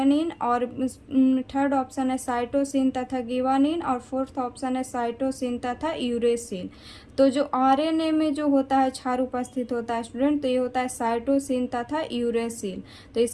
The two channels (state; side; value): identical; both; correlation 1.00